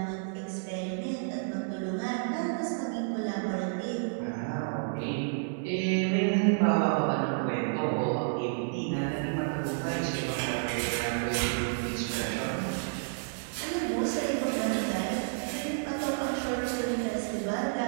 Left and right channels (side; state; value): left; silent; 57 dB below the other